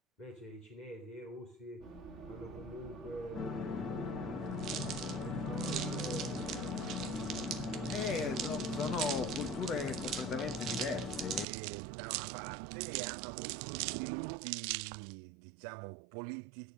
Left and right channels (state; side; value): drops out; left; at 11.5 s